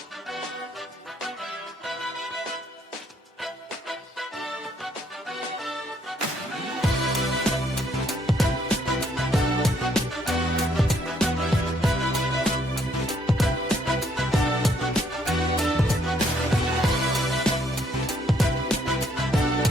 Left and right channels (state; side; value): normal; both; correlation 0.69